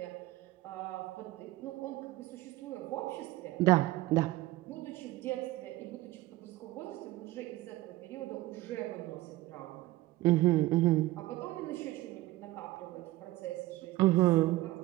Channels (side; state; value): left; quieter; 18.0 dB